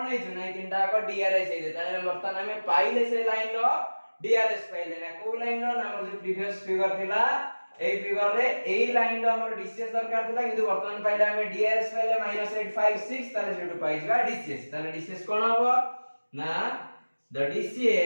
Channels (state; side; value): inverted; both; correlation -1.00